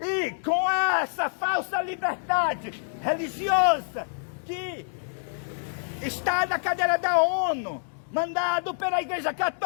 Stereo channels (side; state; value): right; silent; digital silence